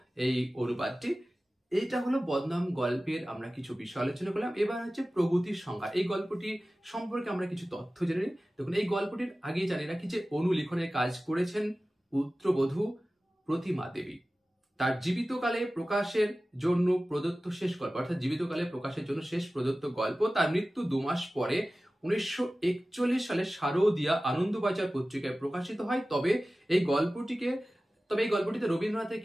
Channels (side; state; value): both; normal; correlation 0.96